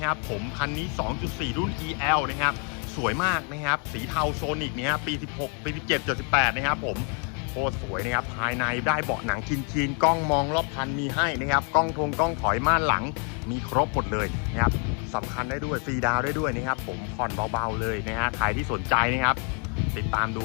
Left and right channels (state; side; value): quieter; right; 38.8 dB